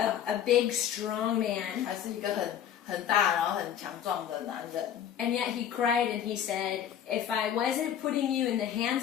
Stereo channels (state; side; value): quieter; right; 9.6 dB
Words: big, strong man. 还是一个很大然后很强壮的男人。 And yet he cried and he said, if I wasn't putting you in the